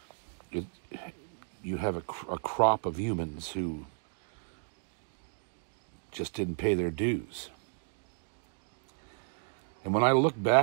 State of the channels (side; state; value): left; silent; digital silence